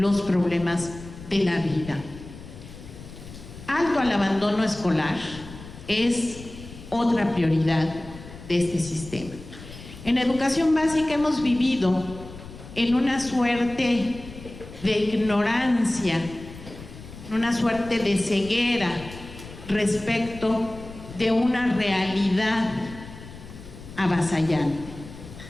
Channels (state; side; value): noise; left; rumble, 15 dB below the sound